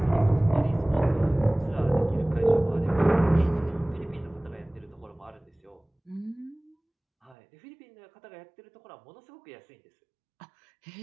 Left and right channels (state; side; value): drops out; left; at 7.4 s